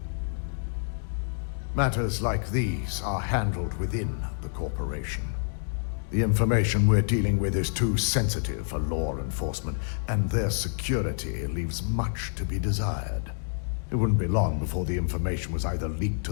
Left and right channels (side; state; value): right; silent; digital silence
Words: Matters like these are handled within the corporation. The information we're dealing with is too sensitive for law enforcement, and their security leaves much to be desired. It wouldn't be long before the information was either leaked